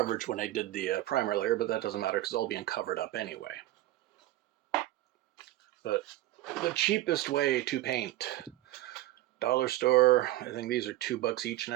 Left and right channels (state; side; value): quieter; left; 15.7 dB